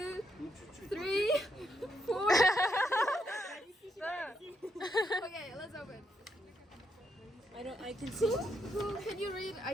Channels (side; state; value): both; normal; correlation 0.78